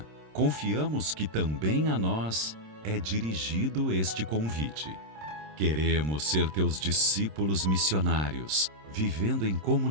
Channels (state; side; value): late; left; 26 ms